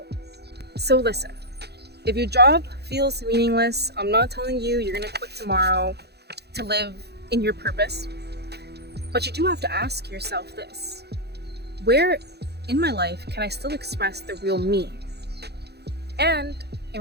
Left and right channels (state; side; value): late; left; 0.48 ms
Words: So listen, if your job feels meaningless, I'm not telling you you're gonna quit tomorrow to live in your purpose. But you do have to ask yourself this: where in my life can I still express the real me? And it